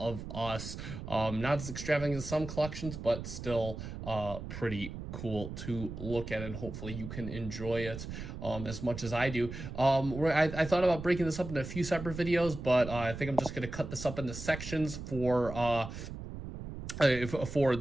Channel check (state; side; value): noise; right; rumble, 9 dB below the sound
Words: us. Not as extravagant as some collections, but still pretty cool to look at, and hopefully you can enjoy it as much as I do. I thought about breaking this up into a few separate videos, but I think I'm just going to cut this up into sections for